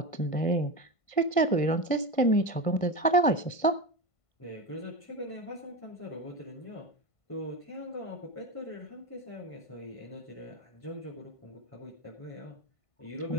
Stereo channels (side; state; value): right; late; 1.5 ms